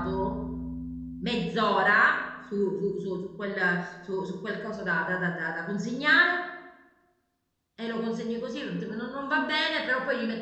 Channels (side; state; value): both; identical; correlation 1.00